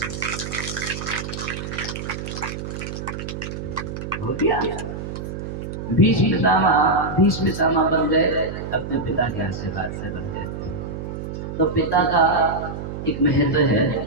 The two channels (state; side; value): noise; right; hum, 7 dB below the sound